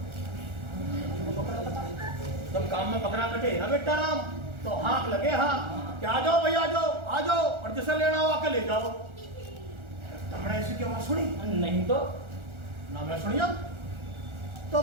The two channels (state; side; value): late; left; 1.4 ms